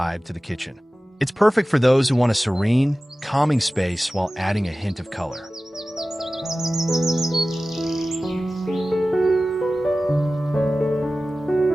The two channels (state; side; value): normal; both; correlation 0.96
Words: to the kitchen. It's perfect for those who want a serene, calming space while adding a hint of color.